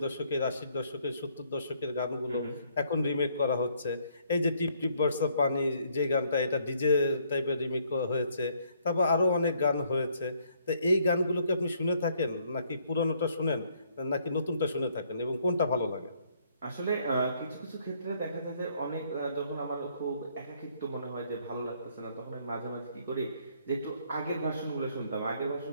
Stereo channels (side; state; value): both; inverted; correlation -0.67